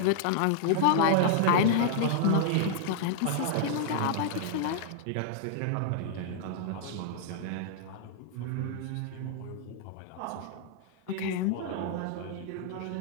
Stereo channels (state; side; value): different; both; correlation -0.01